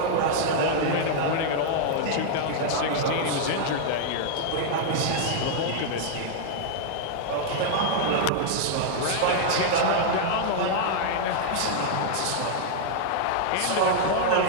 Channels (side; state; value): both; different; correlation -0.01